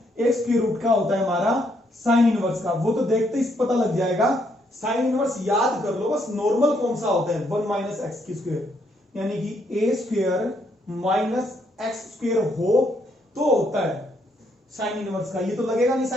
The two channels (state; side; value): normal; both; correlation 0.73